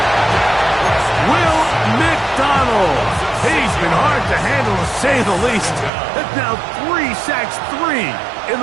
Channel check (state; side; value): drops out; left; at 5.9 s